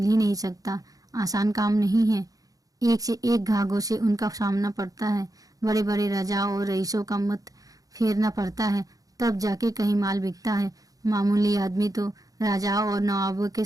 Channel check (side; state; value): left; late; 0.17 ms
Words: ही नहीं सकता, आसान काम नहीं है। एक से एक घाघों से उनका सामना पड़ता है। बड़े बड़े राजाओं और रईसों का मत फेरना पड़ता है, तब जाके कहीं माल बिकता है। मामूली आदमी तो राजाओं और नवाबों के